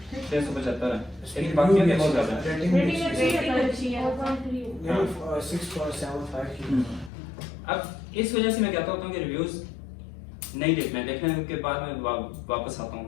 675 है, लेकिन बाकी के बहुत ज्यादा है। अब इस वजह से मैं कहता हूँ कि रिव्यूज नहीं देखना है। देखने के बाद मैं वापस आता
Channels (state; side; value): drops out; right; at 7.1 s